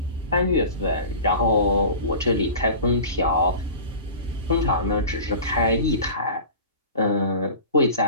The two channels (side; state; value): both; inverted; correlation -0.37